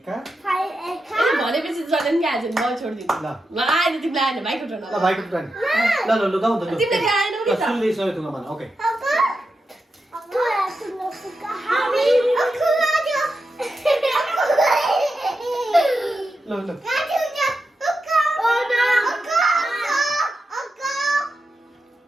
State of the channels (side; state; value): both; normal; correlation 0.88